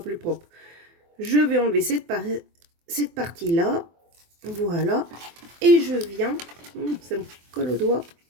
plus propre. Je vais enlever cette partie-là. Voilà. Et je viens, ça me colle au doigt.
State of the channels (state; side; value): late; left; 24 ms